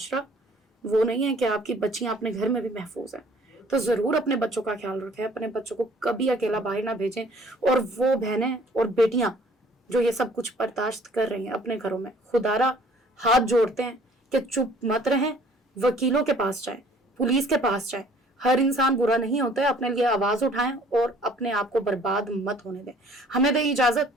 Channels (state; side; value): normal; both; correlation 0.55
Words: وہ نہیں ہے کہ آپ کی بچیاں اپنے گھر میں بھی محفوظ ہیں. تو ضرور اپنے بچوں کا خیال رکھیں, اپنے بچوں کو کبھی اکیلا باہر نہ بھیجیں. اور وہ بہنیں اور بیٹیاں جو یہ سب کچھ برداشت کر رہی ہیں اپنے گھروں میں, خدارا ہاتھ جوڑتے ہیں کہ چپ مت رہیں, وکیلوں کے پاس جائیں, پولیس کے پاس جائیں. ہر انسان برا نہیں ہوتا ہے, اپنے لیے آواز اٹھائیں اور اپنے آپ کو برباد مت ہونے دیں. ہمیں دیں اجازت,